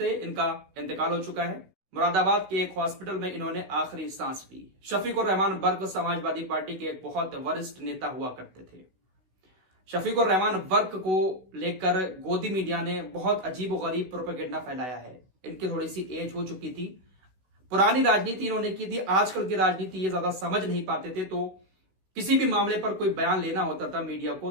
इनका इंतकाल हो चुका है। मुरादाबाद के एक हॉस्पिटल में इन्होंने आखिरी सांस ली। शफीकुर रहमान वर्क समाजवादी पार्टी के एक बहुत वरिष्ठ नेता हुआ करते थे। शफीकुर रहमान वर्क को लेकर गोदी मीडिया ने बहुत अजीब और गरीब प्रोपेगेंडा फैलाया है। इनकी थोड़ी सी एज हो चुकी थी, पुरानी राजनीति इन्होंने की थी। आजकल की राजनीति ये ज्यादा समझ नहीं पाते थे, तो किसी भी मामले पर कोई बयान लेना होता था मीडिया को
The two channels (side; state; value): left; late; 16 ms